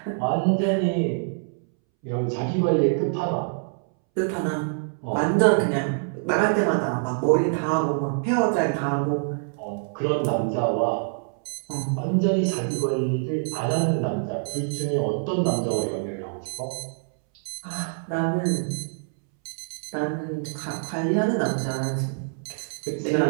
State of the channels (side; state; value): left; silent; 62 dB below the other